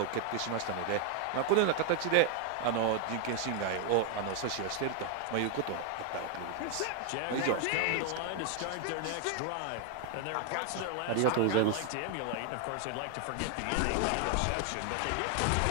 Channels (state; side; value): different; both; correlation 0.00